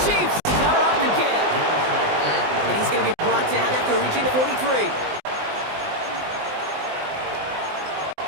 Chiefs cover off the kick. And he's going to be brought down after reaching the 43.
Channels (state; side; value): late; left; 20 ms